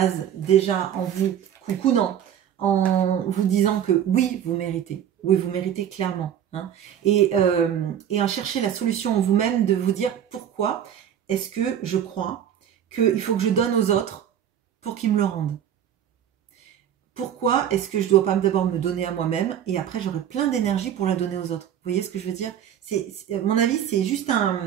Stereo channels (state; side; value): quieter; left; 9.7 dB